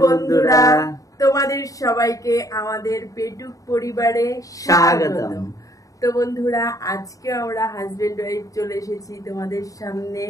বন্ধুরা, তোমাদের সবাইকে আমাদের পেটুক পরিবারে স্বাগতম। তো বন্ধুরা, আজকে আমরা হাজবেন্ড ওয়াইফ চলে এসেছি তোমাদের সামনে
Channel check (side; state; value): right; late; 0.16 ms